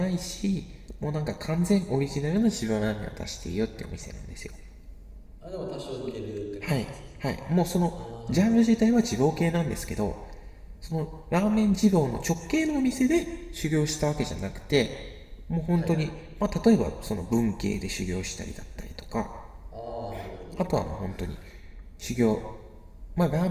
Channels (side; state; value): both; identical; correlation 1.00